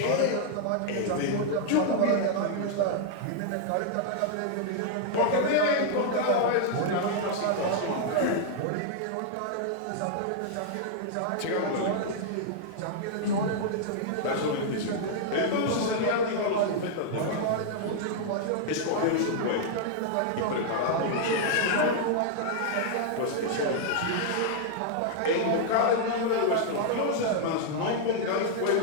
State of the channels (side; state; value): both; different; correlation -0.01